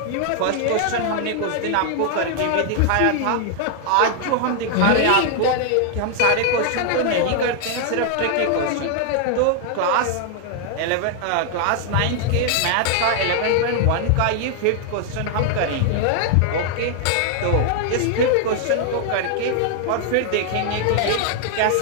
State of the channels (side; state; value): both; different; correlation 0.00